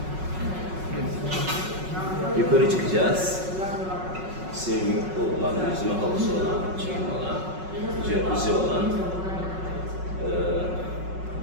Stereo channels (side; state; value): left; late; 5.4 ms